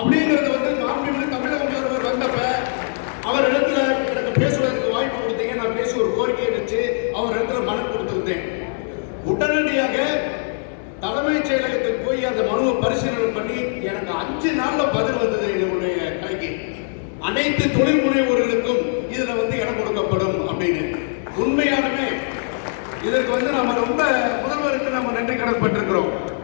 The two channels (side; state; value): right; silent; 65 dB below the other